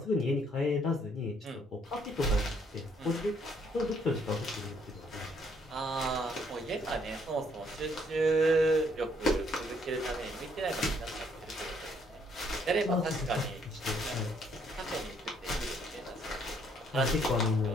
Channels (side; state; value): both; normal; correlation 0.67